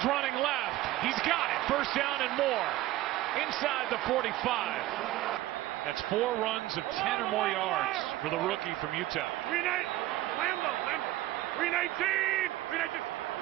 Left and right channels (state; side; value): quieter; left; 16.0 dB